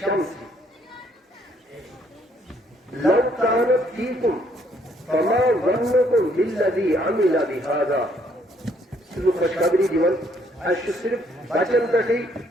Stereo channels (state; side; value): normal; both; correlation 0.67